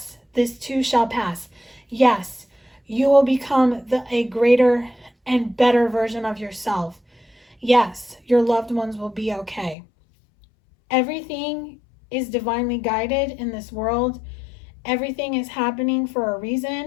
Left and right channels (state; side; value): drops out; right; at 9.8 s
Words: this too shall pass. Yes, you will become a greater and better version of yourself. Yes, your loved ones will be okay. Everything is divinely guided in this world. Everything is happening for a